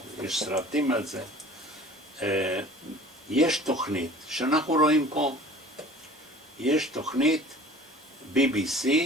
יש סרטים על זה, יש תוכנית שאנחנו רואים פה, יש תוכנית BBC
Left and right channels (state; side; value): normal; both; correlation 0.46